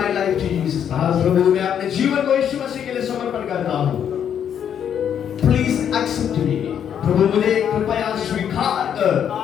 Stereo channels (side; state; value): right; quieter; 8.8 dB